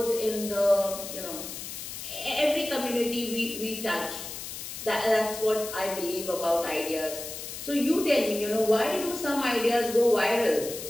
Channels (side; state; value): left; noise; hiss, 9 dB below the sound